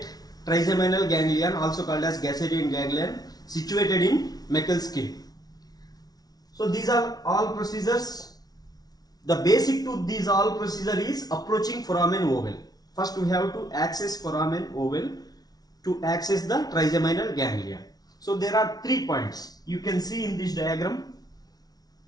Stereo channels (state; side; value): late; right; 0.19 ms